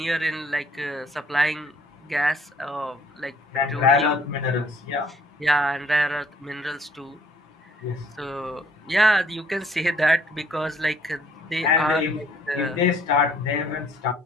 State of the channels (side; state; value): both; normal; correlation 0.61